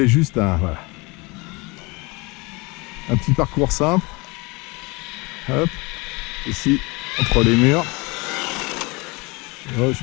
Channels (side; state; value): right; quieter; 26.4 dB